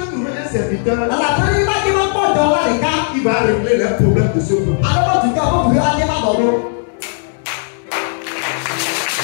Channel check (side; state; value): right; silent; digital silence